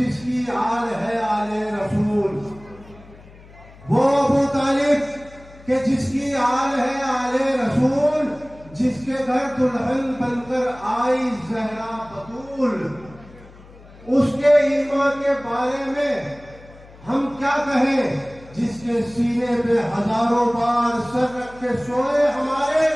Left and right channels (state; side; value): noise; left; hum, 22 dB below the sound